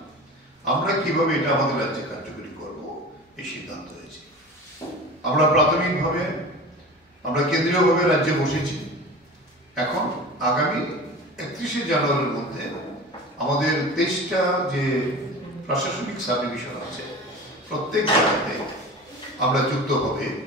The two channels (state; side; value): normal; both; correlation 0.35